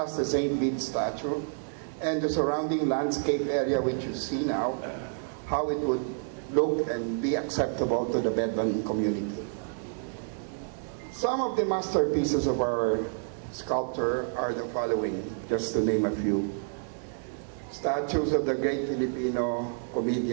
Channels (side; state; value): left; silent; digital silence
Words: the St. Bede statue and the surrounding landscape area which you see now, how it would look and be acceptable to the Bedouin community. Some of the masterpieces of our sculptor are the following, just to name a few. Statues of the great Filipino